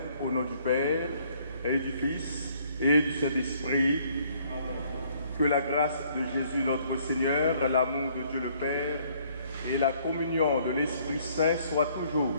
au nom du Père et du Fils et du Saint-Esprit. Que la grâce de Jésus notre Seigneur, l'amour de Dieu le Père et la communion de l'Esprit Saint soient toujours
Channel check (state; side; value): inverted; both; correlation -0.63